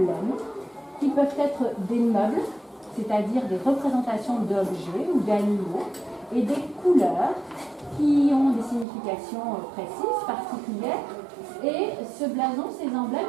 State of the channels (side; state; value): left; drops out; at 8.8 s